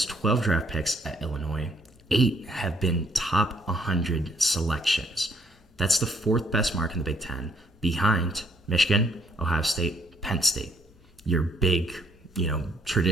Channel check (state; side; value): normal; both; correlation 0.68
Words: 12 draft picks at Illinois, 8 have been top 100 selections. That's the 4th best mark in the Big Ten, behind Michigan, Ohio State, Penn State. Your big,